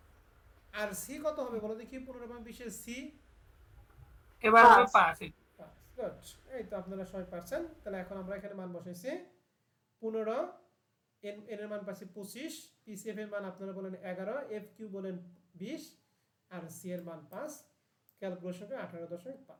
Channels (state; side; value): identical; both; correlation 1.00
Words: আর সি কত হবে বলো দেখি? 15 এবং 20 এর সি এবার হবে 5। গুড, এই তো আপনারা সবাই পারছেন। তাহলে এখন আমরা এখানে মান বসাইছি 15, এন এর মান পাচ্ছি 25, পিসিএফ এর মান আপনারা বলেন 11, এফ কিউ বলেন 20, আর সি এর মান 5। ক্যালকুলেশন করে